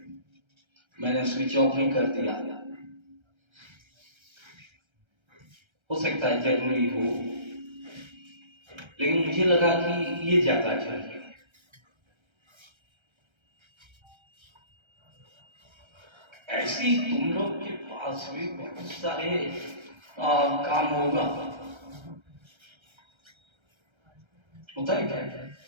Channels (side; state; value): left; late; 1.3 ms